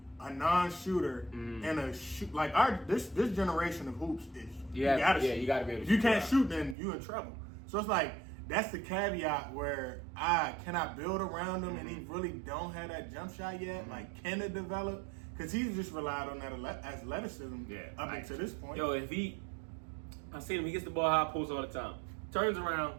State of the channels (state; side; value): drops out; left; at 6.8 s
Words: a non-shooter and a shoot? Like, this generation of hoops is you got to shoot. You got to be able to if shoot. You can't shoot, then you in trouble. So it's like, that's the caveat where I cannot build around him and he really don't have that jump shot yet. Like, can it develop? Because he's just relied on that athleticism up until this point. Yo, I see him, he gets the ball high post all the time. Turns